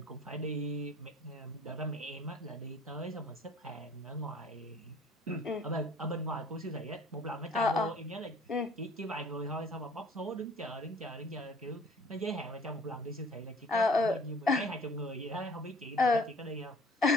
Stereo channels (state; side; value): normal; both; correlation 0.52